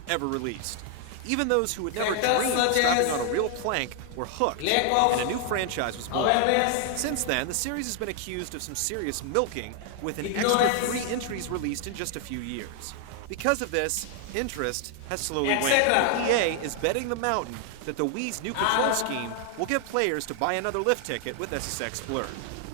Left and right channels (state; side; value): different; both; correlation 0.00